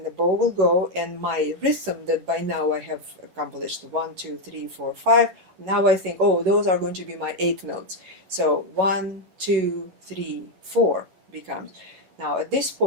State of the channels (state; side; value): late; left; 11 ms